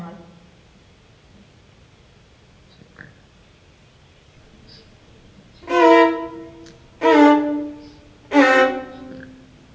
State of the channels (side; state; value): both; identical; correlation 1.00